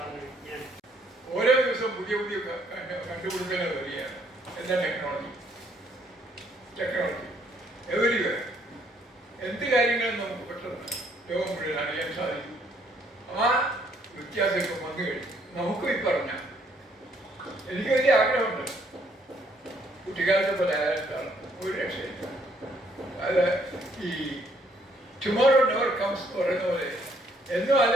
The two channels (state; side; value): normal; both; correlation 0.67